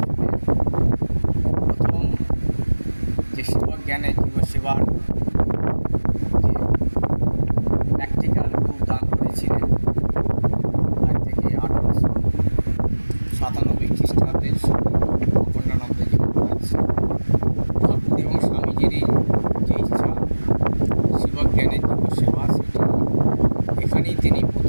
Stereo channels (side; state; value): both; inverted; correlation -1.00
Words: প্রথম যে সেবক জ্ঞানে জীবসেবার যে প্র্যাকটিক্যাল রূপ দান করেছিলেন, আজ থেকে 1897 খ্রিস্টাব্দের অখণ্ডানন্দজি মহারাজ ঠাকুর এবং স্বামীজিরই যে ইচ্ছা সেবক জ্ঞানের জীবসেবা, সেটি এখানেই তিনি